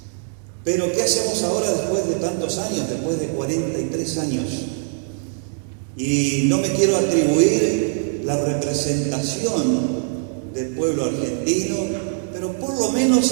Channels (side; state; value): left; silent; digital silence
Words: Pero ¿qué hacemos ahora después de tantos años, después de 43 años? Y no me quiero atribuir la representación del pueblo argentino, pero por lo